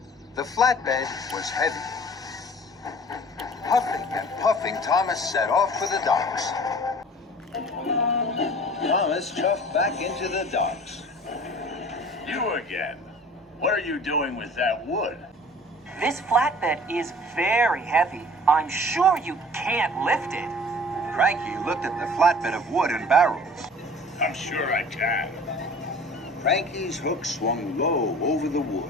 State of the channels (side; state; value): both; normal; correlation 0.46